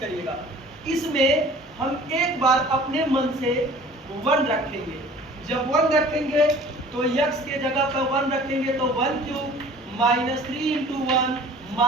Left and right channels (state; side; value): normal; both; correlation 0.48